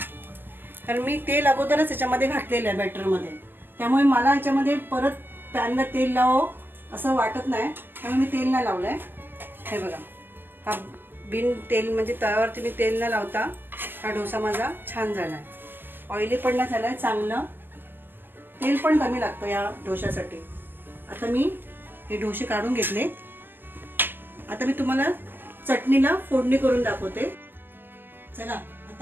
कारण मी तेल अगोदरच याच्यामध्ये घातलेलं आहे बॅटरमध्ये, त्यामुळे मला याच्यामध्ये परत पॅनला तेल लावावं असं वाटत नाही, त्यामुळे मी तेल नाही लावलं आहे. हे बघा, हा बिन तेल म्हणजे तव्यावरती मी तेल न लावता हा डोसा माझा छान झाला आहे. ऑइली पण नाही झाला आहे, चांगलं. तेल पण कमी लागतं या डोशासाठी. आता मी हे डोसे काढून घेतले. आता मी तुम्हाला चटणीला फोडणी करून दाखवते. चला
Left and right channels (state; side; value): late; left; 0.096 ms